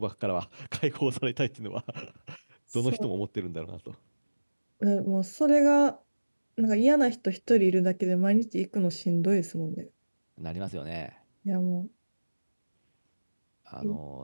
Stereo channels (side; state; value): both; inverted; correlation -1.00